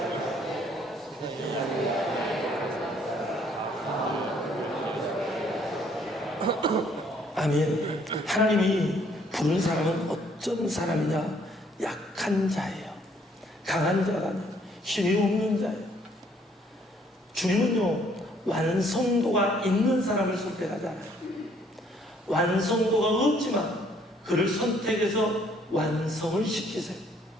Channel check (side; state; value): both; normal; correlation 0.64